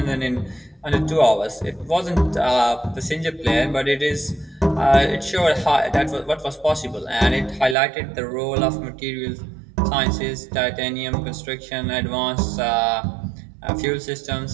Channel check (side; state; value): left; drops out; at 7.8 s